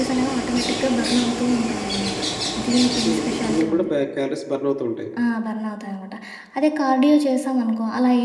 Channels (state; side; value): identical; both; correlation 1.00